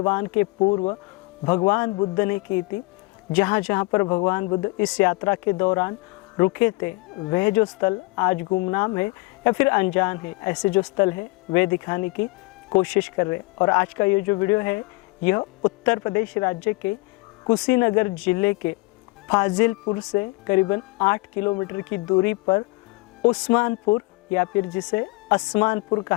के पूर्व भगवान बुद्ध ने की थी, जहाँ जहाँ पर भगवान बुद्ध इस यात्रा के दौरान रुके थे, वह जो स्थल आज गुमनाम है या फिर अनजान है, ऐसे जो स्थल है वे दिखाने की कोशिश कर रहे हैं। और आज का ये जो वीडियो है यह उत्तर प्रदेश राज्य के कुशीनगर जिले के फाजिलपुर से करीबन 8 किलोमीटर की दूरी पर उस्मानपुर या फिर जिसे असमानपुर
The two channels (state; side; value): quieter; right; 25.1 dB